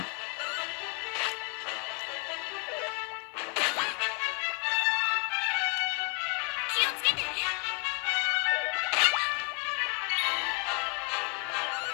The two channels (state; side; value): quieter; right; 34.9 dB